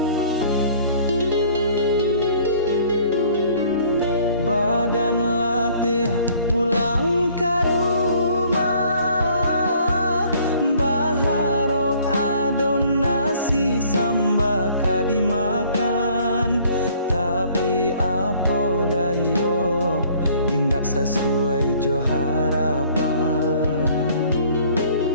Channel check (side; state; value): both; inverted; correlation -0.57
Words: Badan latih pulang ke rumah, baharok adon nasi sambaka dimakan. Tapi apa dayo, indak sesuai jo harapan.